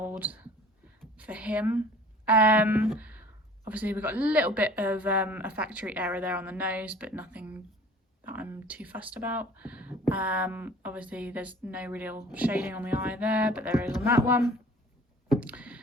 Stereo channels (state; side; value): normal; both; correlation 0.48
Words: for him. Obviously we've got a little bit of a factory error there on the nose, but nothing that I'm too fussed about. Obviously there's no real shading on the eye there, but there is on that one.